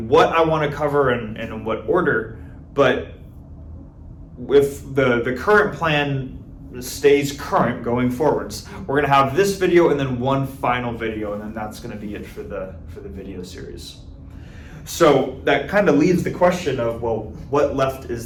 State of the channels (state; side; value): identical; both; correlation 1.00